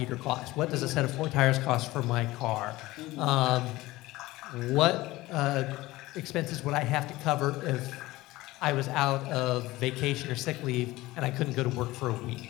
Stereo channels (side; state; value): right; quieter; 18.6 dB